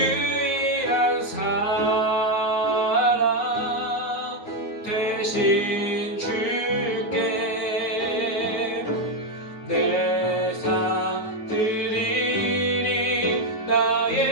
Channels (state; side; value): late; right; 9.5 ms